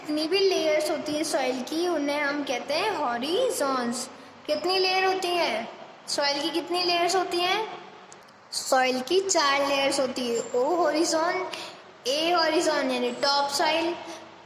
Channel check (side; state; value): both; identical; correlation 1.00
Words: भी लेयर्स होती है सॉइल की उन्हें हम कहते हैं हॉरिजोन्स। कितनी लेयर होती हैं सॉइल की, कितनी लेयर्स होती हैं, सॉइल की 4 लेयर्स होती है। ओ हॉरिजोन, ए हॉरिजोन यानी टॉप सॉइल,